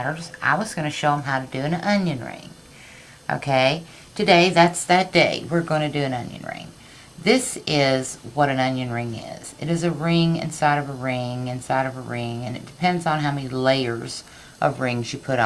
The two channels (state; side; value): identical; both; correlation 1.00